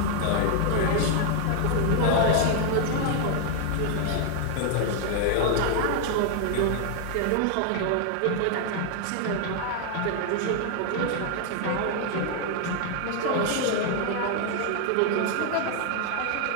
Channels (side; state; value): both; different; correlation 0.00